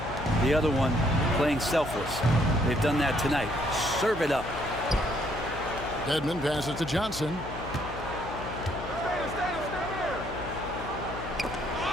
The other one, playing selfless. They've done that tonight. Serve it up. Dedmon passes to Johnson.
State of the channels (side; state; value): left; noise; hum, 10 dB below the sound